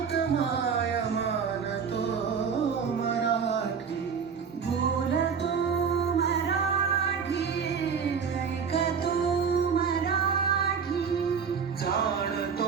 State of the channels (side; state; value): left; quieter; 6.4 dB